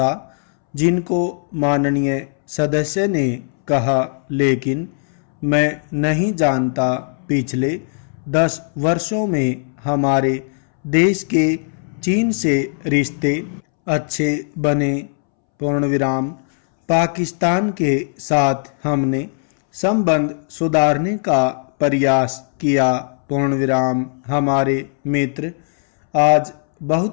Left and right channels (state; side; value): silent; right; 67 dB below the other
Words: जिनको माननीय सदस्य ने कहा, लेकिन मैं नहीं जानता पिछले 10 वर्षों में हमारे देश के चीन से रिश्ते अच्छे बने। पूर्णविराम। पाकिस्तान के साथ हमने संबंध सुधारने का प्रयास किया। पूर्णविराम। हमारे मित्र आज